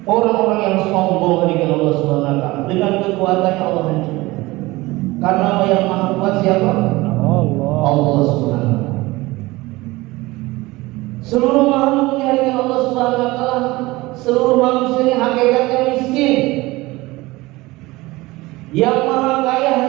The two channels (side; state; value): left; quieter; 20.6 dB